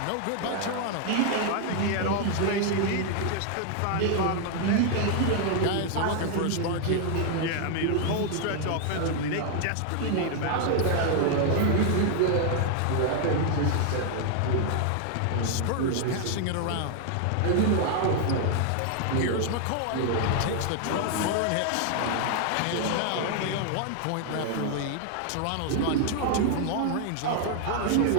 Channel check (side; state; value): both; different; correlation 0.00